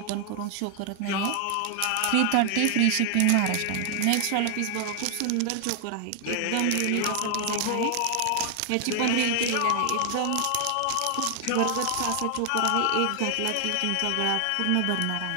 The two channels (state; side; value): different; both; correlation 0.00